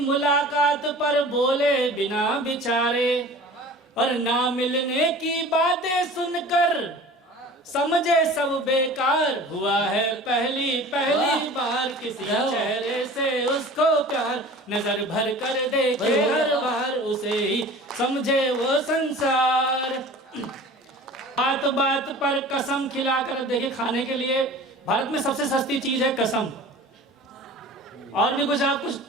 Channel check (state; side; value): normal; both; correlation 0.41